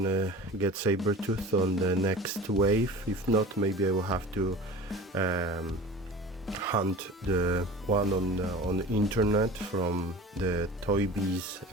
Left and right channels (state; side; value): normal; both; correlation 0.38